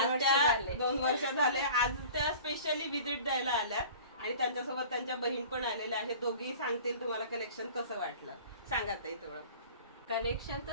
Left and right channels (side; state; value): both; inverted; correlation -0.43